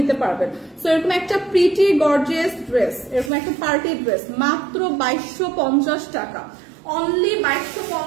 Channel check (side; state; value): left; drops out; at 3.3 s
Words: পারবেন। সো এরকম একটা প্রিটি গর্জিয়াস ড্রেস, এরকম একটা পার্টি ড্রেস মাত্র 2250 টাকা, অনলি